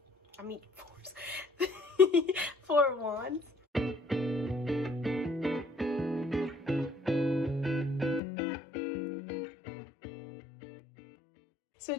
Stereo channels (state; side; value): drops out; right; at 8.2 s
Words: I mean, Four of Wands. So